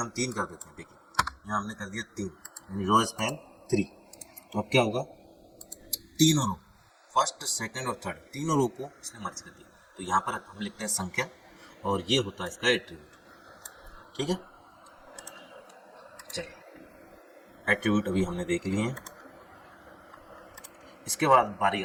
3 कर देते हैं, देखिए यहाँ हमने कर दिया 3, यानी रो स्पैन 3, तो अब क्या होगा, तीनों रो फर्स्ट सेकंड और थर्ड तीनों रो को इसने मर्ज कर दिया। तो यहाँ पर हम लिखते हैं संख्या और ये होता है इसका एट्रीब्यूट, ठीक है। चलिए एट्रीब्यूट अभी हमने देख लिए हैं। इसके बाद बारी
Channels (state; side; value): identical; both; correlation 1.00